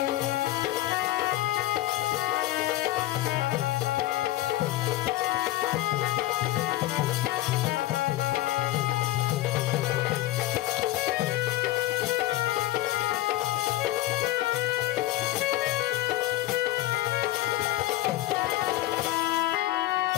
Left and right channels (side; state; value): right; quieter; 16.2 dB